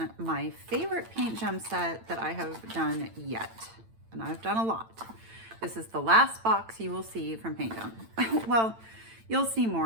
my favorite paint gem set that I have done yet, and I've done a lot. This is the last box you will see from Paint Gem. Well, you'll see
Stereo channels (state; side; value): late; left; 8.9 ms